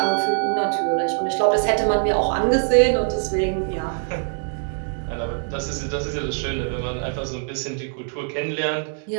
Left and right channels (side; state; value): left; silent; 63 dB below the other